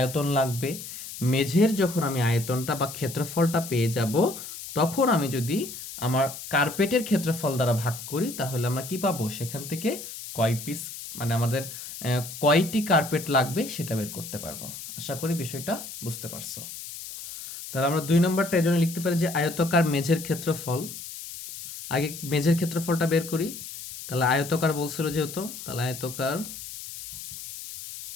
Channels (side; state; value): left; noise; hiss, 11 dB below the sound